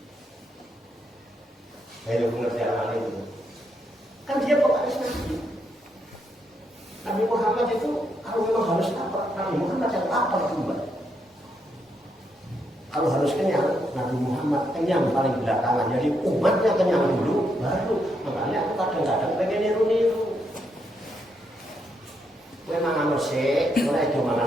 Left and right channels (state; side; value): normal; both; correlation 0.78